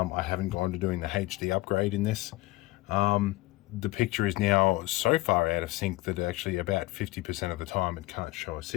haven't gone to doing the HD upgrade in this. The picture is now so far out of sync that actually about 50% of the time it can't show a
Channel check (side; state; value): right; quieter; 19.5 dB